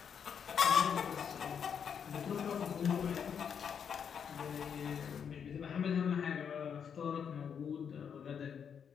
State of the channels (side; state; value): right; quieter; 7.4 dB